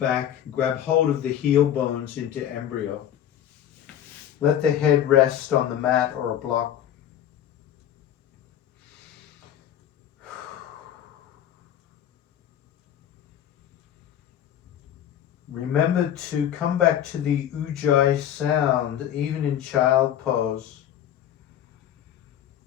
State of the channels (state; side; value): quieter; right; 10.5 dB